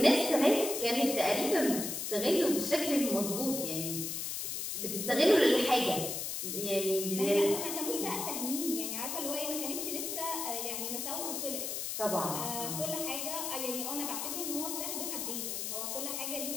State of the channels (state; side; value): noise; left; hiss, 3 dB below the sound